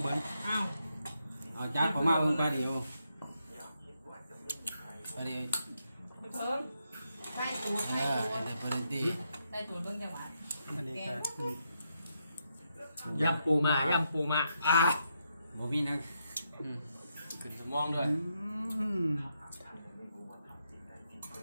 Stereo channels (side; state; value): both; inverted; correlation -0.81